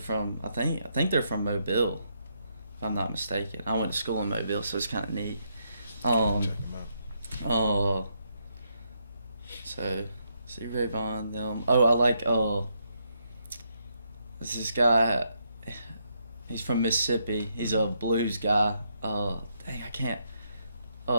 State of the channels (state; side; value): inverted; both; correlation -0.78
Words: I think they're from Mobile, if I'm not mistaken. I went to school in Mobile, so it's kind of neat. So Stevie Ray Vaughan, them. Oh, I like this guy. He's from Mississippi. He's a blues guy. Dang, I can't.